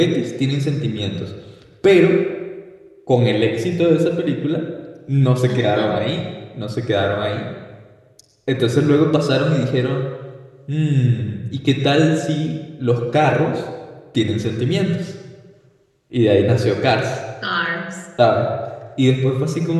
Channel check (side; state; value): both; identical; correlation 1.00